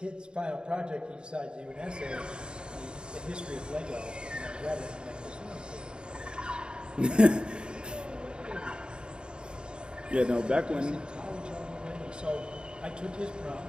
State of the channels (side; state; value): left; late; 0.050 ms